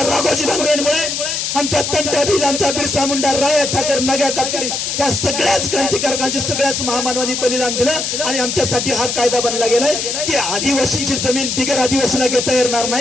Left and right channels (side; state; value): left; noise; hiss, 2 dB below the sound